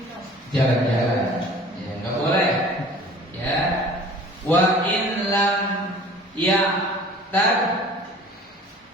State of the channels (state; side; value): normal; both; correlation 0.47